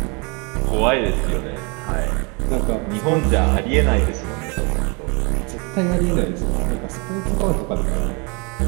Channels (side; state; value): left; quieter; 31.8 dB